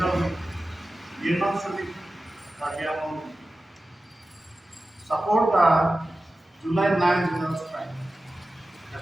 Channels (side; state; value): both; normal; correlation 0.95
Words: Union Civic Cardiamal Committee. Support the July 9 general strike. The